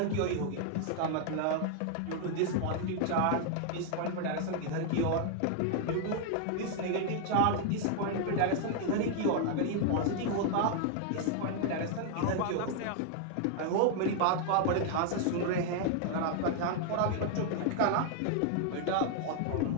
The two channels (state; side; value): different; both; correlation 0.00